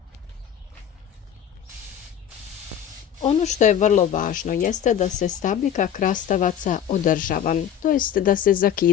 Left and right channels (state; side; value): quieter; right; 9.4 dB